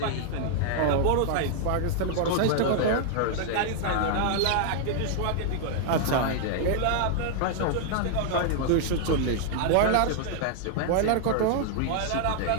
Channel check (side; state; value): both; different; correlation 0.00